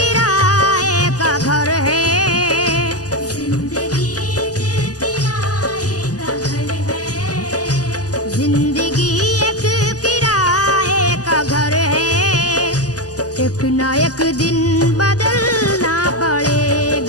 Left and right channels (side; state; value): right; late; 0.67 ms